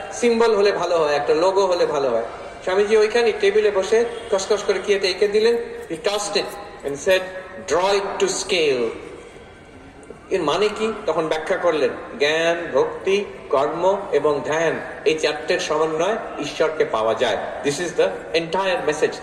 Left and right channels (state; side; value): identical; both; correlation 1.00